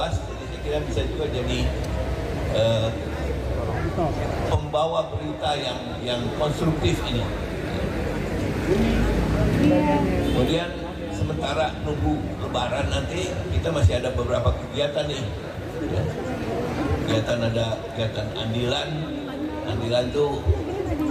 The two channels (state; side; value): identical; both; correlation 1.00